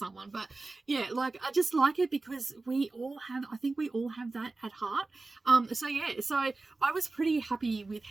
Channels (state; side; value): quieter; left; 3.4 dB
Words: But yeah, like, I just like it because I think we all have that at heart. So yeah, so I was pretty happy with